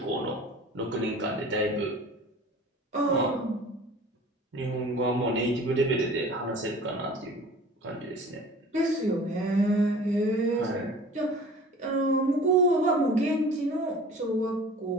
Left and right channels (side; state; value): both; normal; correlation 0.44